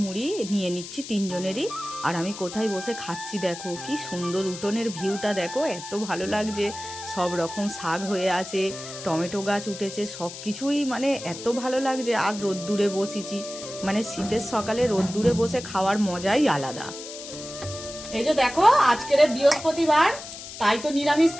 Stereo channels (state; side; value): noise; left; hiss, 12 dB below the sound